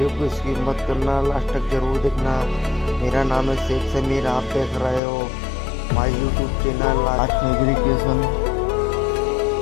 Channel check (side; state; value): right; drops out; at 5.0 s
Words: को स्किप मत करना, लास्ट तक जरूर देखना। मेरा नाम है शेख समीर, आप देख रहे हो माय यूट्यूब चैनल आज फैब्रिकेशन।